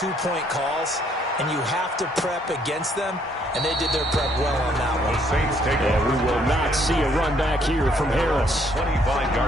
calls, and you have to prep against them. And they did their prep well on that one. The Saints take over. We will not see a run back here from Harris.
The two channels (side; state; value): both; normal; correlation 0.67